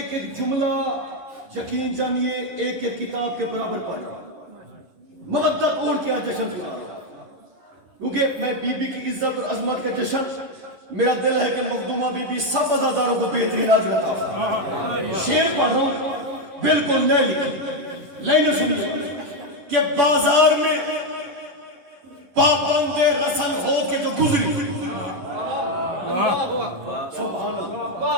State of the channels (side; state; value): left; late; 10 ms